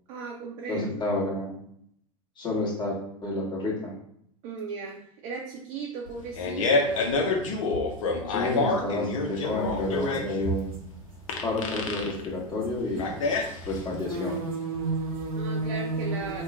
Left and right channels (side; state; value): both; normal; correlation 0.08